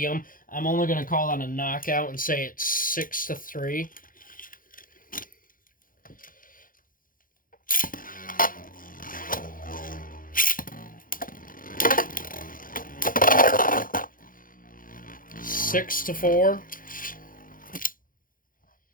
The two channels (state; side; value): late; right; 0.40 ms